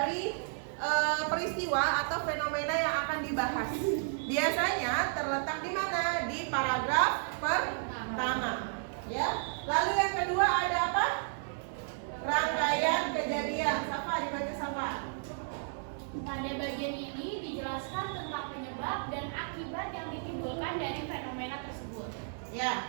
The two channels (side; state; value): left; silent; digital silence